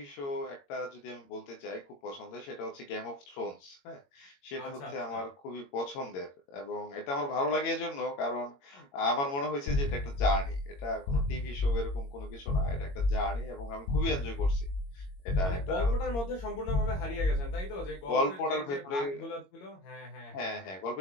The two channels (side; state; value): right; late; 22 ms